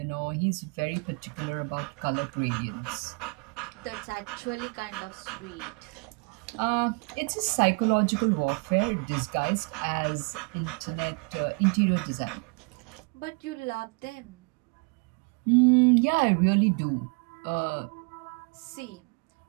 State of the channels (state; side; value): quieter; left; 33.4 dB